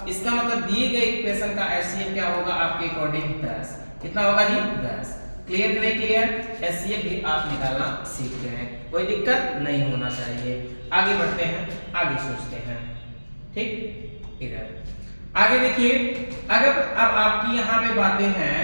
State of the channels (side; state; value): both; inverted; correlation -1.00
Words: इसका मतलब दिए गए इक्वेशन का एचसीएफ क्या होगा आपके अकॉर्डिंग 10। कितना होगा जी 10। क्लियर कि नहीं क्लियर? एचसीएफ भी आप निकालना सीख गए हैं, कोई दिक्कत नहीं होना चाहिए। आगे बढ़ते हैं, आगे सोचते हैं, ठीक। इधर आगे देखिए, अगर अब आपकी यहाँ पे बातें